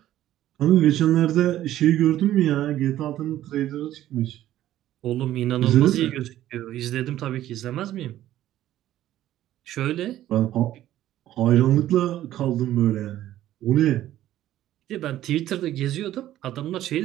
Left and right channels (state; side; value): quieter; left; 13.3 dB